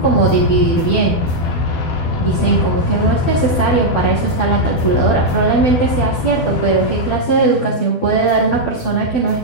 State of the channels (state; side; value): late; right; 12 ms